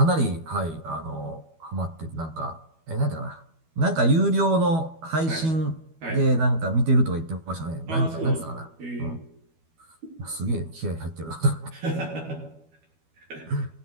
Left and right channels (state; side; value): late; left; 12 ms